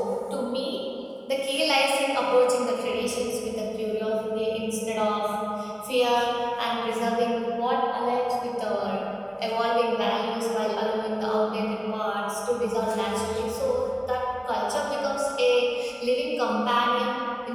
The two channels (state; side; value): identical; both; correlation 1.00